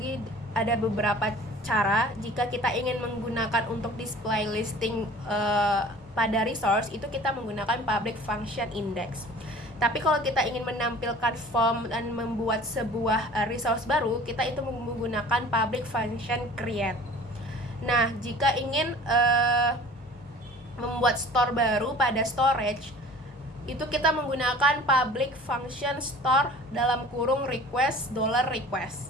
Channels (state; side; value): normal; both; correlation 0.45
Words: ada beberapa cara. Jika kita ingin menggunakan untuk display listing pada resource, itu kita menggunakan public function index. Tapi kalau kita ingin menampilkan form dan membuat sebuah resource baru, kita itu menggunakan public function create. Nah, jika ingin membuat store baru pada storage, itu kita menggunakan public function store dalam kurung request